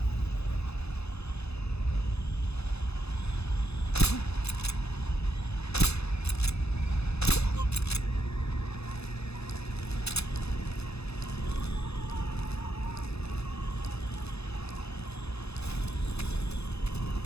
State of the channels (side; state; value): right; late; 0.79 ms